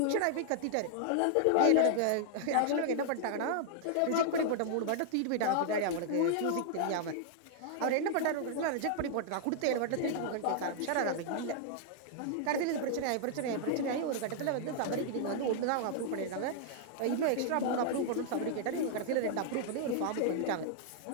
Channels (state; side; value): different; both; correlation -0.01